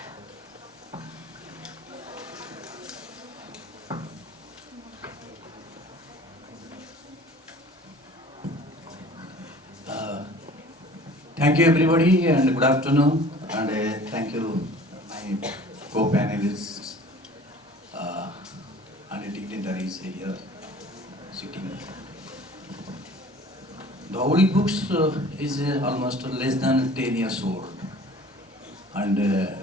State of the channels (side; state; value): both; normal; correlation 0.47